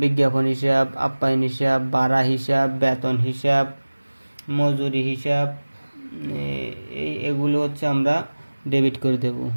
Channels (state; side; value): inverted; both; correlation -1.00